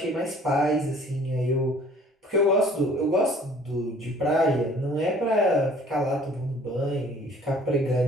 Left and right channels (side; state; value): both; normal; correlation 0.53